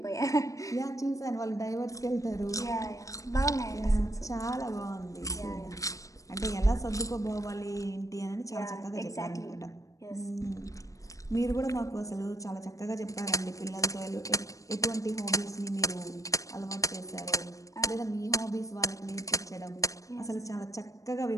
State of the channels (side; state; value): right; late; 0.16 ms